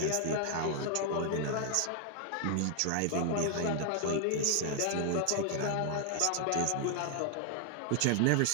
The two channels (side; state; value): both; different; correlation 0.00